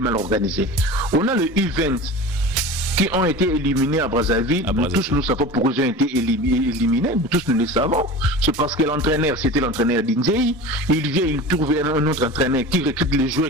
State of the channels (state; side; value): normal; both; correlation 0.34